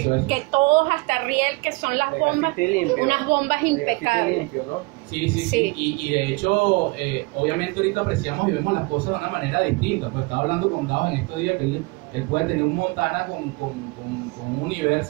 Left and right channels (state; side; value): quieter; left; 26.7 dB